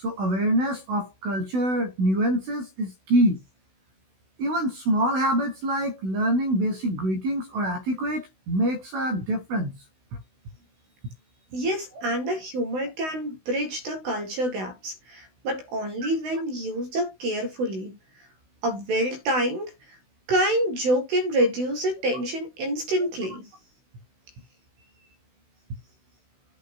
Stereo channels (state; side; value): late; left; 16 ms